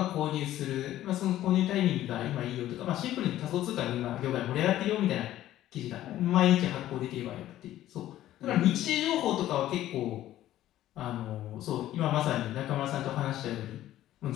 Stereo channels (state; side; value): quieter; right; 13.6 dB